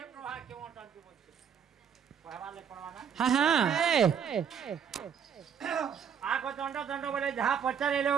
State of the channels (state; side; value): quieter; left; 7.6 dB